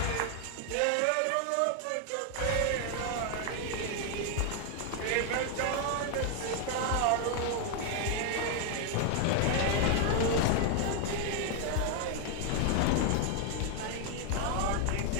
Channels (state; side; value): different; both; correlation 0.00